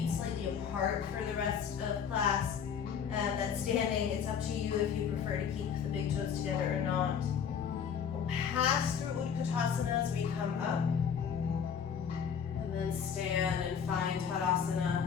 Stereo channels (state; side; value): quieter; right; 7.4 dB